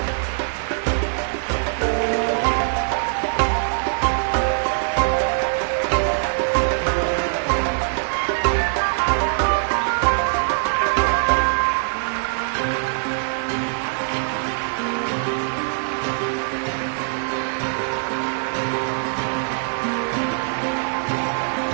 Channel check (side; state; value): left; silent; 57 dB below the other